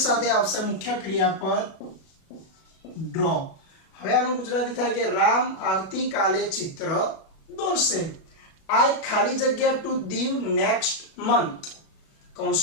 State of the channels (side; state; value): right; late; 37 ms